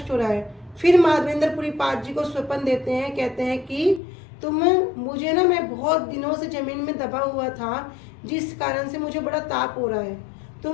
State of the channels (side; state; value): right; drops out; at 4.0 s